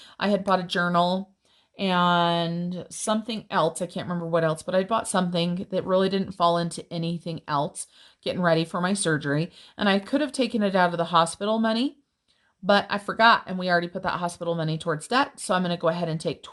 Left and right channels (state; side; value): identical; both; correlation 1.00